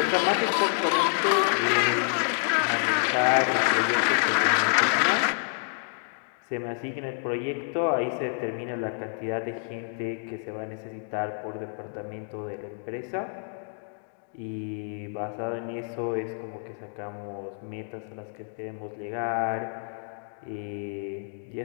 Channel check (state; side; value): silent; right; 57 dB below the other